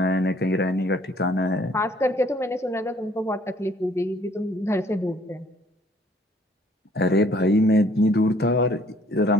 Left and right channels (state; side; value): normal; both; correlation 0.60